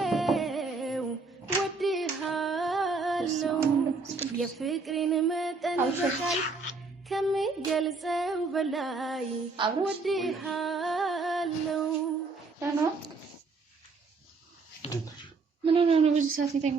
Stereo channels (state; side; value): quieter; left; 4.1 dB